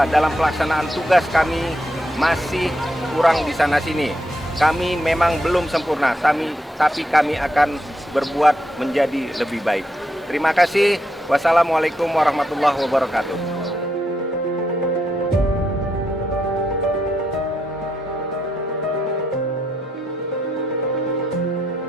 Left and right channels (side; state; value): both; normal; correlation 0.80